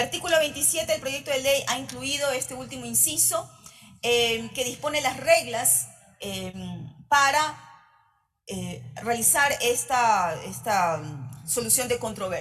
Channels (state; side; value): identical; both; correlation 1.00